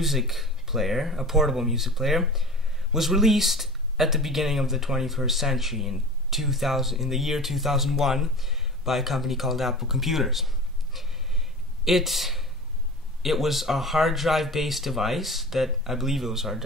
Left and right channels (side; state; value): both; normal; correlation 0.35